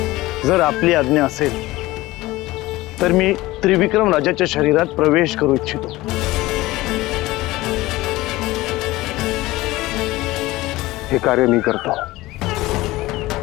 जर आपली आज्ञा असेल तर मी त्रिविक्रम राजाच्या शरीरात प्रवेश करू इच्छितो। हे कार्य मी करतो।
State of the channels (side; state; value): right; quieter; 18.7 dB